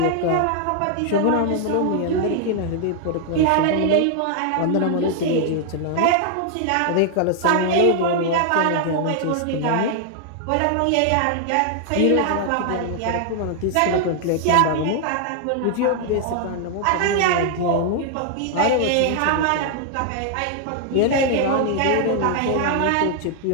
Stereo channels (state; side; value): different; both; correlation 0.00